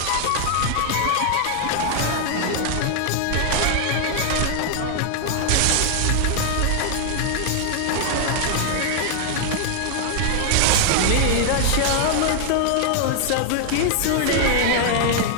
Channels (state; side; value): different; both; correlation 0.00